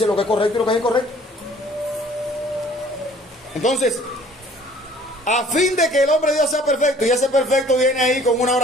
lo que es correcto y lo que es incorrecto. Entonces, a fin de que el hombre de Dios sea perfecto, y ese perfecto viene ahí con una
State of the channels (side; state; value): both; normal; correlation 0.54